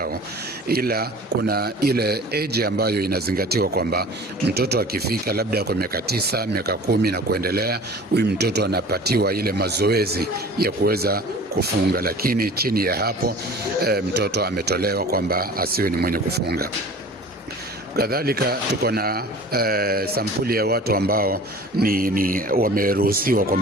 ila kuna ile age ambayo inazingatiwa kwamba mtoto akifika labda kwa miaka 9, miaka 10 na kuendelea, huyu mtoto anapatiwa ile mazoezi ya kuweza kufunga, lakini chini ya hapo mtoto ametolewa kwamba asiwe ni mwenye kufunga. Kadhalika tuko na sampuli ya watu ambao ni wameruhusiwa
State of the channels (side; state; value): both; normal; correlation 0.43